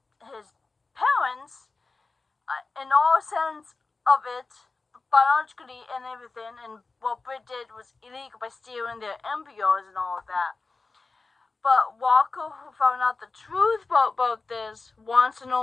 his parents, in all sense of it, biologically and everything. And what Britt did was illegal by stealing their embryos and all of that. But Walker, who found out the truth about this, wants to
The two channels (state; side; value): quieter; right; 3.9 dB